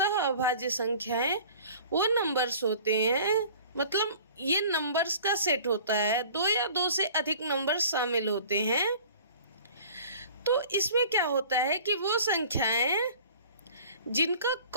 अभाज्य संख्याएं वो नंबर्स होते हैं, मतलब ये नंबर्स का सेट होता है, 2 या 2 से अधिक नंबर्स शामिल होते हैं। तो इसमें क्या होता है कि वो संख्याएं जिनका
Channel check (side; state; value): both; inverted; correlation -0.47